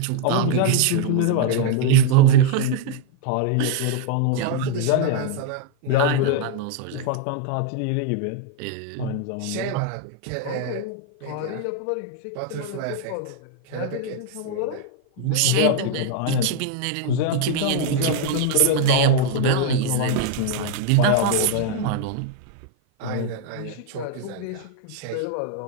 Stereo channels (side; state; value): both; different; correlation 0.00